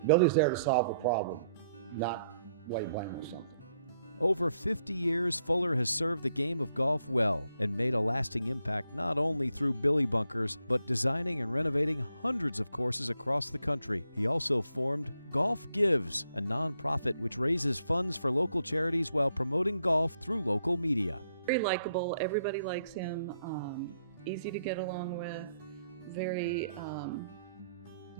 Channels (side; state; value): both; inverted; correlation -0.75